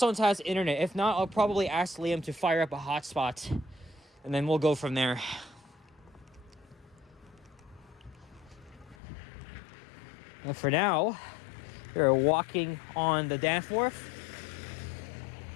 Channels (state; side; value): drops out; right; at 9.0 s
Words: has internet. If not, I'll probably ask Liam to fire up a hotspot, and then we'll go from there. Well, for now, we're walking on the Danforth.